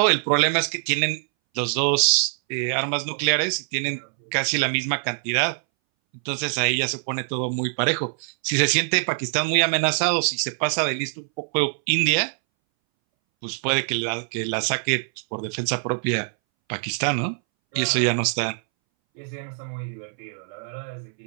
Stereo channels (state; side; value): silent; left; 62 dB below the other